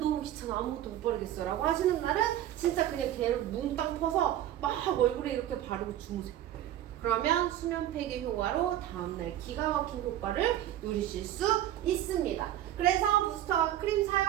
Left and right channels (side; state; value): left; quieter; 12.5 dB